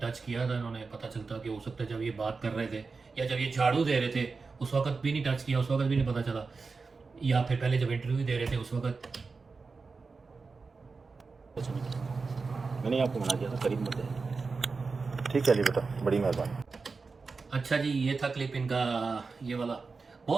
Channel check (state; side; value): quieter; left; 4.4 dB